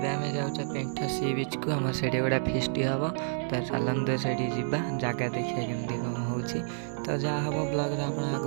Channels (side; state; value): left; silent; digital silence